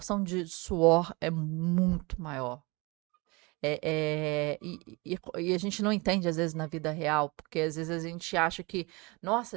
de suor é muito maior. E a gente não entende, às vezes, na vida real, porque às vezes a gente acha que, nossa,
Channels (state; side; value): quieter; left; 26.5 dB